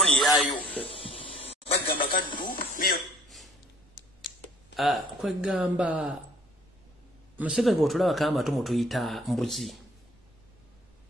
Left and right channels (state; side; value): normal; both; correlation 0.56